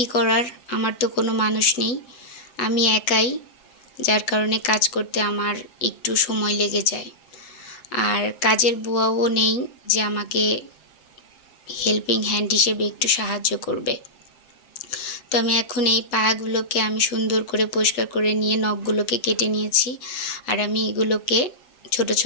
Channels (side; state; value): right; late; 8.1 ms